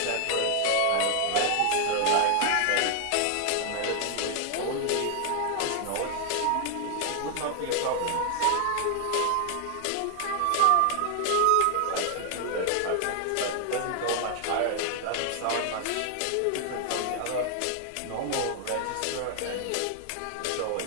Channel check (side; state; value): both; different; correlation 0.00